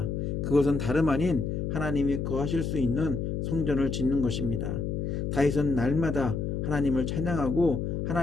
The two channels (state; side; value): noise; left; hum, 2 dB below the sound